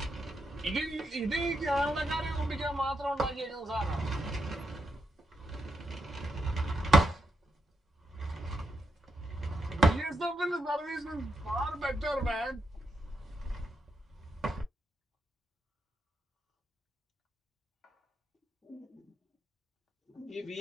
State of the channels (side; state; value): both; normal; correlation 0.81